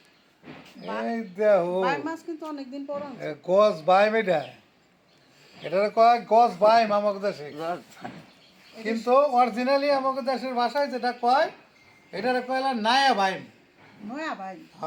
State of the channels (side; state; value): both; identical; correlation 1.00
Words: এই দেখো বাই মাছ কিন্তু অনেকদিন পর আনছে। গছ বাইম, এটা কয় গছ বাইম আমাকে দেশে, কিন্তু অরিজিনালি আমাকে দেশের ভাষায় যেটা কয় এটার কয়লা নায়া বাইম। নয়া ভাই